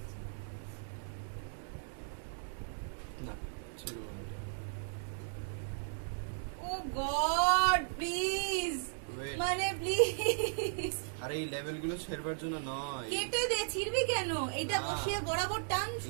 না ছিল না। ও গড প্লিজ, Wait. মানে প্লিজ আরে এই লেভেলগুলো ছেড়বার জন্য নয়। কেটে দে, ছিড়বি কেন? এটা না। বসিয়ে বরাবর টান,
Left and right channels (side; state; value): left; silent; digital silence